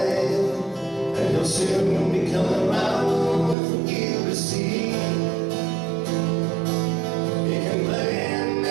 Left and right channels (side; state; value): left; drops out; at 3.6 s